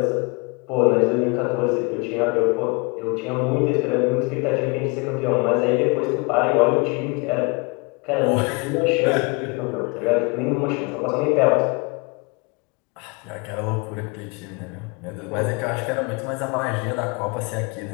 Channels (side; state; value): right; quieter; 29.6 dB